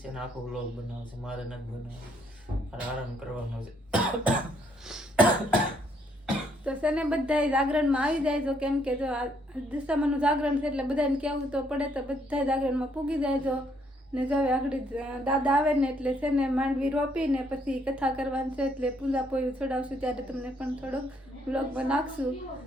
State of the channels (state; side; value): normal; both; correlation 0.70